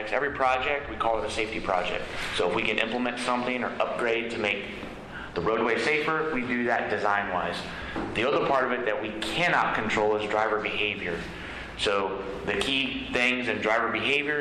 every project we call it a safety project. So if we can implement something or upgrade to make the roadway safer, we do that design-wise. The other part of it that we cannot control is driver behavior. So the key things in driver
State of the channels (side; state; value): both; identical; correlation 1.00